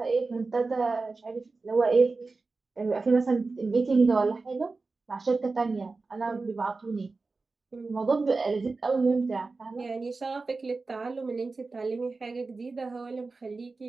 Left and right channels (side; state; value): left; quieter; 3.9 dB